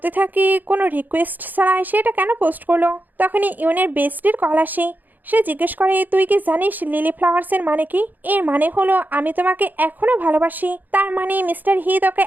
থাকি কোনো রিকোয়েস্ট ছাড়া সে এটা কেন পোস্ট করলো। তখনই ইউনের বেস্টির কল আসে। সে জিজ্ঞেস করে, তুই কি জানিস লিলি ফ্লাওয়ার্সের মানে কি? এর মানে হলো আমি তোমাকে এখনো ভালোবাসি। তার মানে মিস্টার হি তোকে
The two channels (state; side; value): late; left; 0.085 ms